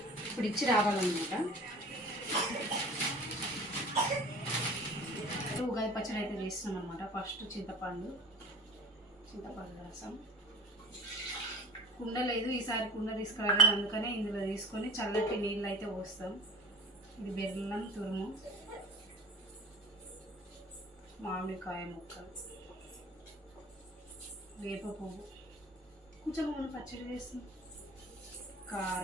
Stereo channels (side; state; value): both; normal; correlation 0.42